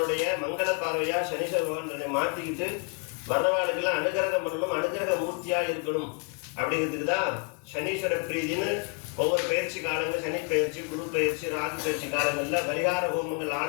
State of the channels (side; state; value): right; quieter; 34.8 dB